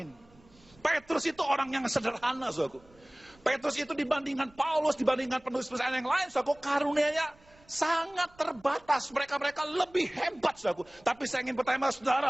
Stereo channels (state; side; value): noise; right; rumble, 28 dB below the sound